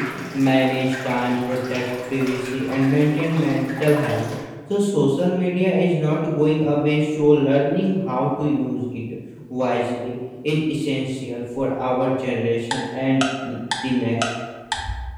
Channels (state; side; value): identical; both; correlation 1.00